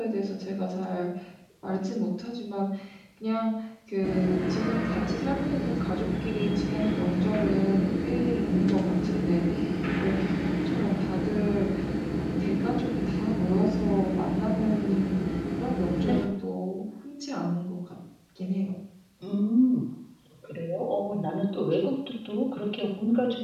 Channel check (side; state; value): both; identical; correlation 1.00